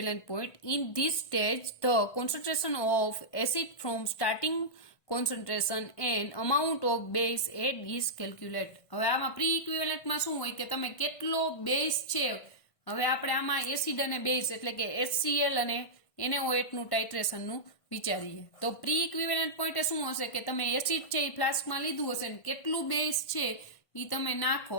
point in this stage the concentration of acid from starting concentration and amount of base add is calculate. હવે આમાં પ્રી ઇક્વિવેલન્ટમાં શું હોય કે તમે કેટલો બેઝ છે, હવે આપણે આમાં એસિડ અને બેઝ એટલે કે HCl અને NaOH નું ટાઇટ્રેશનનું વિચારીએ તો પ્રી ઇક્વિવેલન્ટ પોઈન્ટ શું હશે કે તમે એસિડ છે એ ફ્લાસ્કમાં લીધું હશે ને કેટલું બેઝ છે એ તમે નાખો,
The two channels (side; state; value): right; late; 1.5 ms